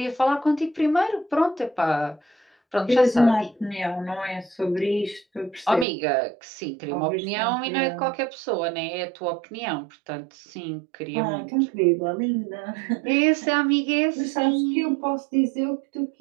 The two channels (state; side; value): drops out; left; at 5.9 s